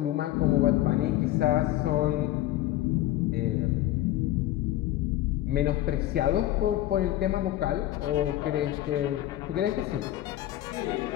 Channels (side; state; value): right; quieter; 14.3 dB